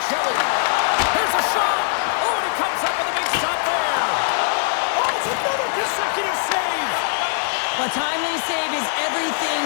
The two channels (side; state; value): right; silent; digital silence